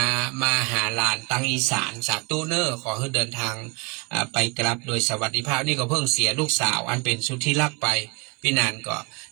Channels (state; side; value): quieter; left; 29.2 dB